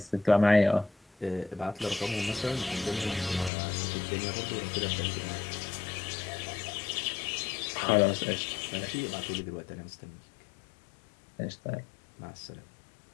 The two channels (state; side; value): drops out; right; at 3.5 s